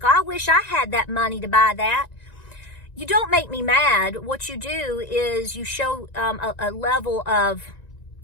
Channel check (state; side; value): late; right; 1.9 ms